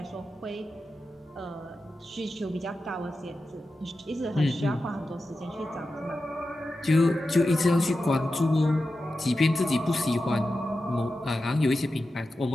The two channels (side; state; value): both; normal; correlation 0.92